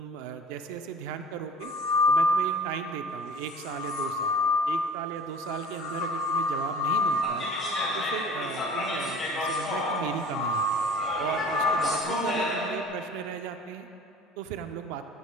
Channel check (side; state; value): both; normal; correlation 0.44